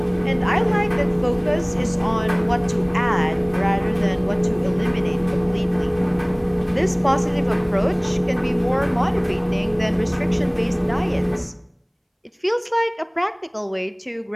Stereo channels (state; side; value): identical; both; correlation 1.00